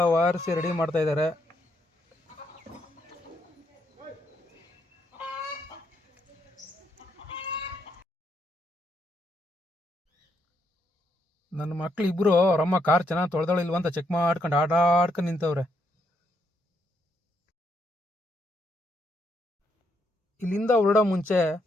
ವಾರಿಸಿ ರೆಡಿ ಮಾಡ್ತಾ ಇದ್ದಾರೆ. ನನ್ನ ಮಕ್ಳು ಇಬ್ರು ಅವರಮ್ಮ ಕಾರ್ ಚೆನ್ನಾಗಿ ತೊಳೆದಳಿಲ್ವ ಅಂತ ಚೆಕ್ ಮಾಡ್ಕೊಂಡು ಆಟಾಡ್ಕೊಂಡು ನಿಂತವ್ರೆ. ಇಲ್ಲಿಂದ ಹೊರಡೋ ಮುಂಚೆ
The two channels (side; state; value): both; normal; correlation 0.76